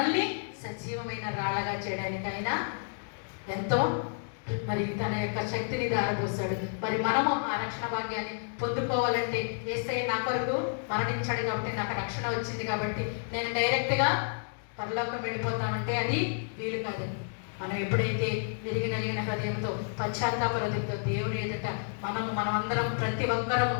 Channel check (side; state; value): right; silent; digital silence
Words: సజీవమైన రాళ్ళగా చేయడానికి ఆయన ఎంతో మరి తన యొక్క శక్తిని దారపోసాడు. మరి మనము ఆ రక్షణ భాగ్యాన్ని పొందుకోవాలంటే యేసయ్య నా కొరకు మరణించాడు కాబట్టి నాకు రక్షణ వచ్చింది కాబట్టి నేను డైరెక్ట్గా పరలోకం వెళ్ళిపోతానంటే అది వీలు కాదండి. మనం ఎప్పుడైతే విరిగి నలిగిన హృదయంతో పశ్చాత్తాప హృదయంతో దేవుని ఎదుట మనమందరం ప్రతి ఒక్కరము